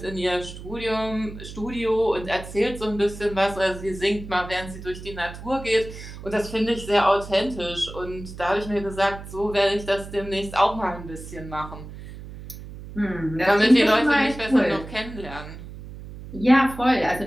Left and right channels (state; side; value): noise; right; hum, 13 dB below the sound